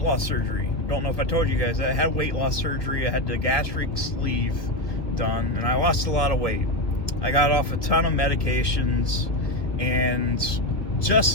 loss surgery. Don't know if I told you guys. I had weight loss surgery. I had the gastric sleeve done, and I lost a lot of weight. I got off a ton of medications, and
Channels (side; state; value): right; late; 1.6 ms